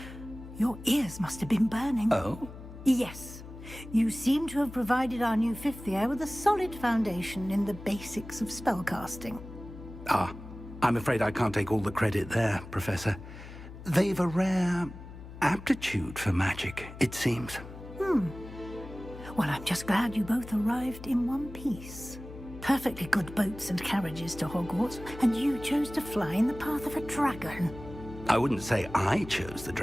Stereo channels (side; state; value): left; noise; hum, 14 dB below the sound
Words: Your ears must have been burning. Oh? Yes. You seem to have provided our new fifth year with a solid foundation in the basics of spellcasting. Ah, I'm afraid I can't take all the credit there, Professor. They've a rare aptitude for magic, it seems. Well, I'm just glad you both arrived in one piece. Perfectly good boats and carriages to Hogwarts, and you chose to fly in the path of a dragon. I wouldn't say I chose the